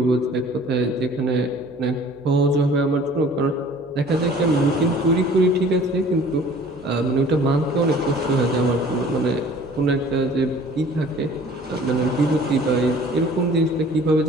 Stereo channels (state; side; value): noise; right; hum, 28 dB below the sound